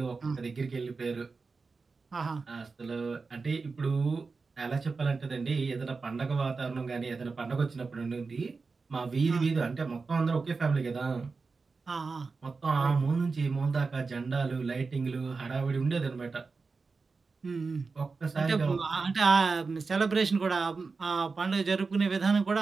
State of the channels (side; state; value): left; quieter; 4.4 dB